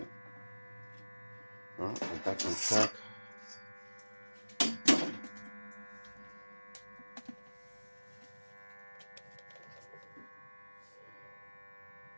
Alright, we're back on track.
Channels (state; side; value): inverted; both; correlation -1.00